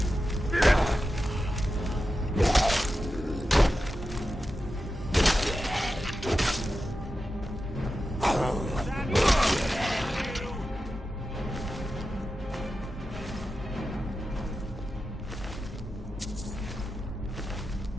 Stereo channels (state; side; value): normal; both; correlation 0.91